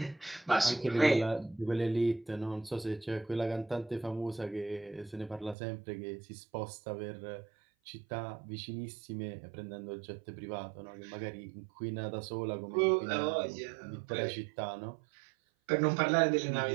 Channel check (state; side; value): drops out; left; at 5.6 s